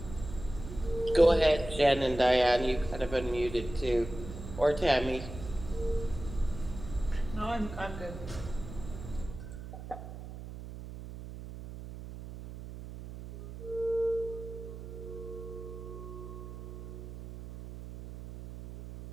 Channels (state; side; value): noise; right; hum, 11 dB below the sound